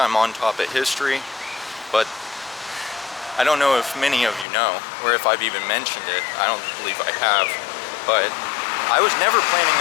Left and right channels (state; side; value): drops out; right; at 4.5 s